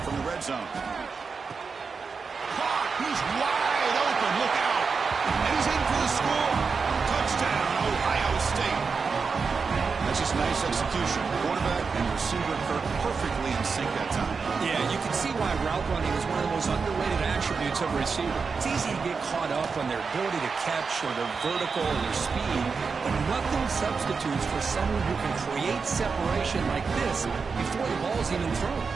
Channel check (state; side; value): quieter; left; 5.1 dB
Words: from the red zone. He's wide open. Look out. And he's in for the score. Touchdown, Ohio State. That's just nice execution. Quarterback and receiver Kirk perfectly in sync that time. Yeah, you can see why route running is one of the most underrated attributes of a receiver. It's easy to get caught up on their ability to catch or their vertical or their speed, but nothing substitutes for someone who can create separation like this before the ball's even thrown.